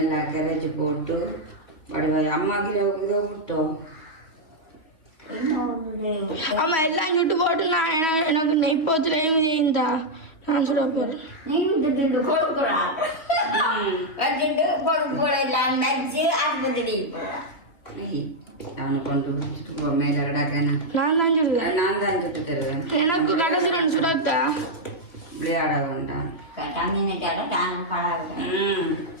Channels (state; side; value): late; right; 2.9 ms